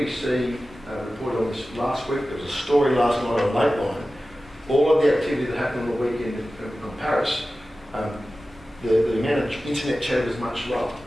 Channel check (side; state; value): both; normal; correlation 0.95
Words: reported on this last week, there was a story last night on Lateline. All of the activity that happened on the weekend in Paris, the amount of internet chat was much lower.